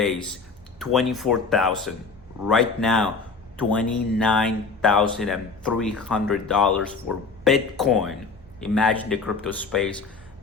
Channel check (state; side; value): quieter; right; 4.5 dB